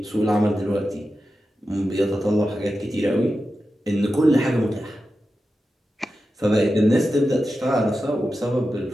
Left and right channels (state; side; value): normal; both; correlation 0.91